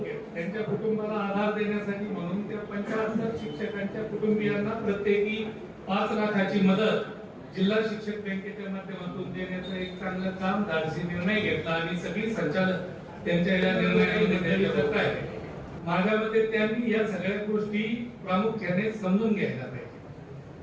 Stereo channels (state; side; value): identical; both; correlation 1.00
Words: त्यांच्या कुटुंबाला आधार देण्यासाठी म्हणून त्या 75 शिक्षकांच्या कुटुंबियांना प्रत्येकी 5 लाखाची मदत जिल्हा शिक्षक बँकेच्या माध्यमातून देण्याचं एक चांगलं काम धाडसी निर्णय घेतला आणि सगळी संचालक त्यांच्या या निर्णयामध्ये करत आहेत. माझ्या मते त्यांनी या सगळ्या गोष्टी प्रामुख्याने समजून घ्यायला पाहिजे.